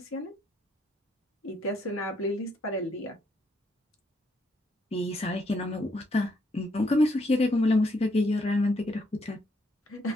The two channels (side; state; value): both; normal; correlation 0.74